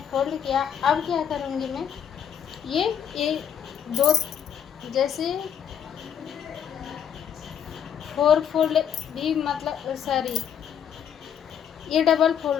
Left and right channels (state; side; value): quieter; right; 8.7 dB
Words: फोल्ड किया। अब क्या करूँगी मैं, ये दो, जैसे फोर फोल्ड भी, मतलब सॉरी, ये डबल